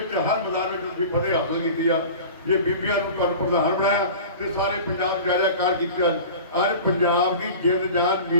ਹਰ ਮੈਦਾਨ ਵਿੱਚ ਤੁਸੀਂ ਫਤਿਹ ਹਾਸਲ ਕੀਤੀ ਆ। ये बीबियां नूं तुहानूं प्रधान बनाया तो सारे पंजाब जायजाकार किया। अज पंजाब की जिंद जान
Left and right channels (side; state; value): both; inverted; correlation -0.37